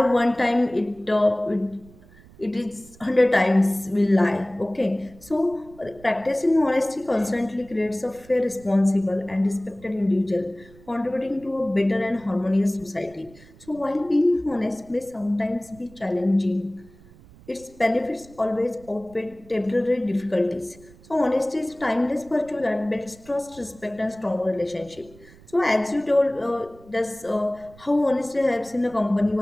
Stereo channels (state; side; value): noise; right; rumble, 24 dB below the sound